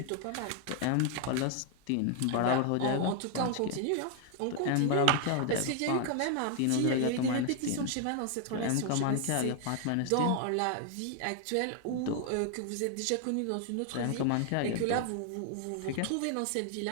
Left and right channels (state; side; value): different; both; correlation 0.00